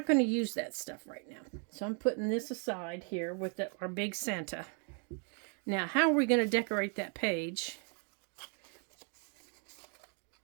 going to use that stuff right now. So I'm putting this aside here with our big Santa. Now, how are we going to decorate that page?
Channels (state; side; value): quieter; left; 38.8 dB